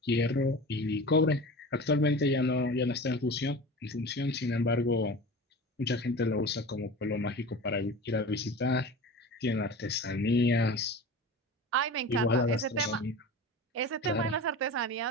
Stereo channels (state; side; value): normal; both; correlation 0.33